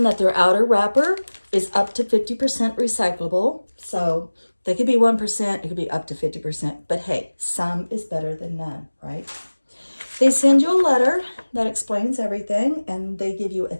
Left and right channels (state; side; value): inverted; both; correlation -1.00